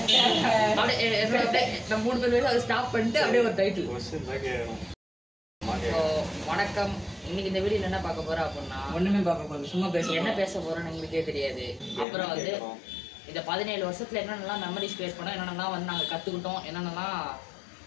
அப்படியே நம்ம 3 பேர் அதை ஸ்டாப் பண்ணிட்டு அப்படியே ஒரு டைட்டில். வணக்கம். இன்னைக்கு இந்த வீடியோ என்ன பார்க்க போறோம் அப்படின்னா, ஒண்ணுமே பார்க்க போறோம், சும்மா என்ன பேச போறோம்னு எங்களுக்கே தெரியாது. அப்புறம் வந்து இந்த 17 வருஷத்துல என்னென்னலாம் மெமரிஸ் கிரியேட் பண்ணோம், என்னென்னலாம் வந்து நாங்கள் கற்றுக்கிட்டோம், என்னென்னலாம்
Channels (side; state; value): right; drops out; at 12.1 s